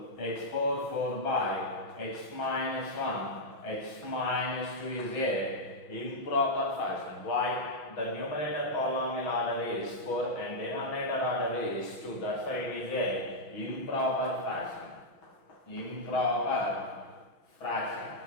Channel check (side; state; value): right; late; 6.1 ms